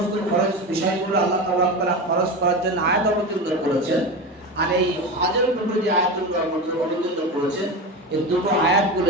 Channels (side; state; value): both; normal; correlation 0.24